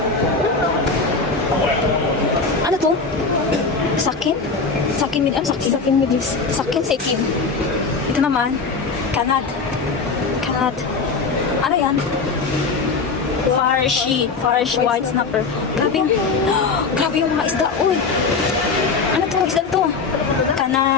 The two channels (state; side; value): quieter; right; 4.5 dB